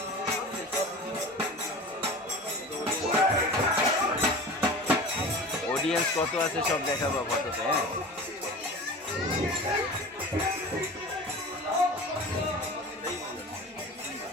অডিয়েন্স কত আছে সব দেখাবো ফটোতে। হ্যাঁ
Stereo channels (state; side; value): normal; both; correlation 0.35